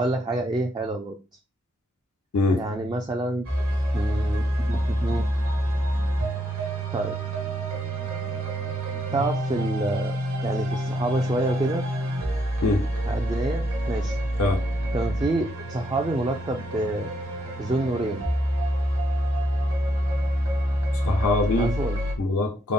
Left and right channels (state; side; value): normal; both; correlation 0.74